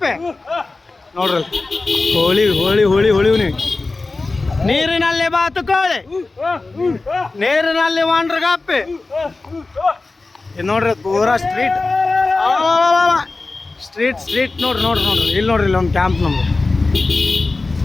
ನೋಡ್ರಿ. ಹೋಳಿ ಹೋಳಿ ಹೋಳಿ ಹೊಳಿವ್ ನೀವು. ನೀರಿನಲ್ಲಿ ಬಾತುಕೋಳಿ, ನೀರಿನಲ್ಲಿ ವಾಂಡ್ರಗಪ್ಪೆ. ಇದು ನೋಡ್ರಿ ಪೂರಾ ಸ್ಟ್ರೀಟ್ ಸ್ಟ್ರೀಟ್ ಸ್ಟ್ರೀಟ್ ನೋಡ್ರಿ ನೋಡ್ರಿ ನೋಡ್ರಿ. ಇಲ್ಲಿ ನೋಡ್ರಿ, ಇಲ್ಲಿ ಒಂದು ಕ್ಯಾಂಪ್ ನಮ್ದು.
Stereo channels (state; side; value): quieter; right; 3.5 dB